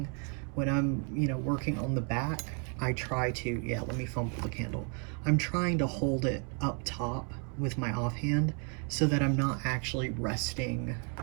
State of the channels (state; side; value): quieter; left; 39.0 dB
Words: When I'm, working on the back, I try to, yeah, let me fumble the candle. I'm trying to hold it up top with my offhand so that I'm not actually resting